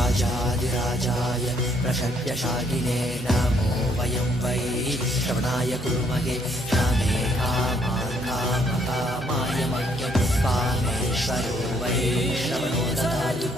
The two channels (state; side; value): normal; both; correlation 0.68